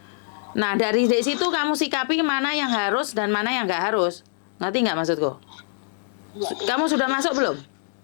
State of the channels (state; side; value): silent; right; digital silence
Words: Nah, dari situ kamu sikapi mana yang harus dan mana yang gak harus. Ngerti nggak maksudku? Kamu sudah masuk belum?